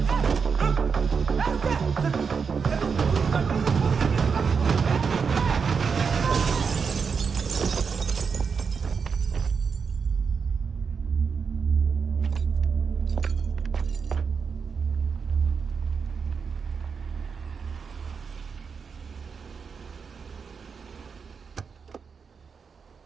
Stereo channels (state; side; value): quieter; left; 5.8 dB